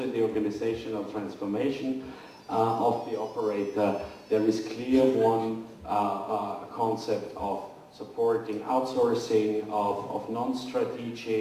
in the organizational transformation of the operator. There is clear one concept of supporting outsourcing of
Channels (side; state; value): both; identical; correlation 1.00